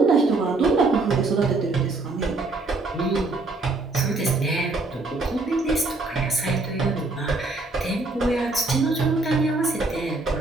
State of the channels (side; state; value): left; quieter; 3.3 dB